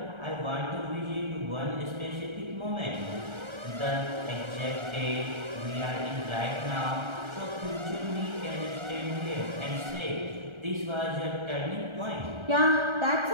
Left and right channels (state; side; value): late; left; 1.4 ms